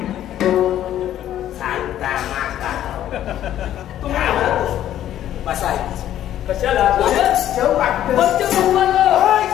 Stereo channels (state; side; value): quieter; right; 11.8 dB